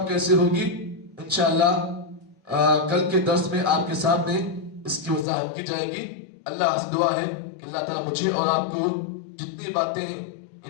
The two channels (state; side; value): drops out; right; at 5.2 s